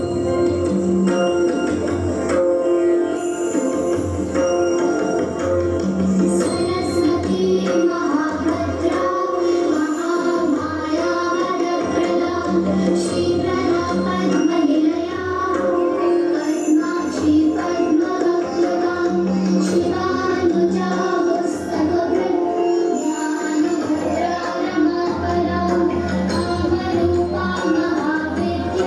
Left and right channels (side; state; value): both; identical; correlation 1.00